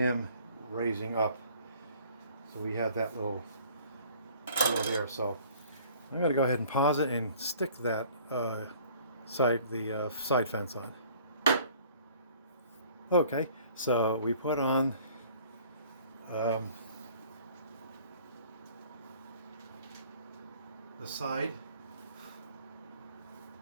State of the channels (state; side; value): inverted; both; correlation -0.53